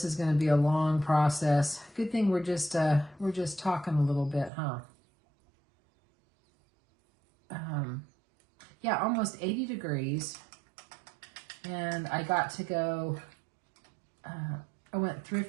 is going to be a long process. Good thing we're just talking a little bit, huh? Yeah, almost 80 degrees. And I got to go, I went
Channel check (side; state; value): left; drops out; at 4.5 s